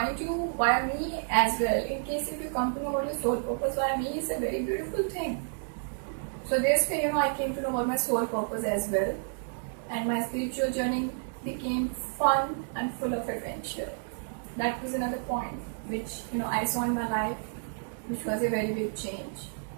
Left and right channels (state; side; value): silent; left; digital silence